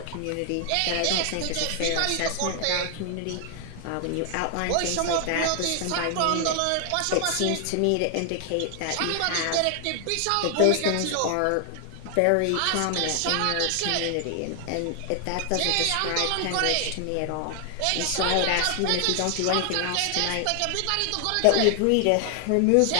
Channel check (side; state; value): both; different; correlation 0.00